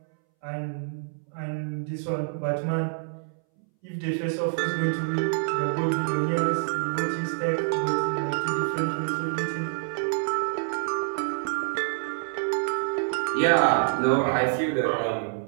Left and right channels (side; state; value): left; silent; 60 dB below the other